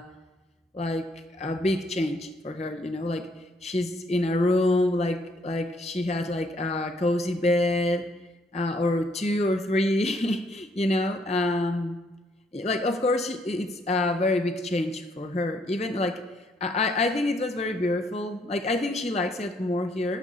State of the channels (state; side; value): normal; both; correlation 0.69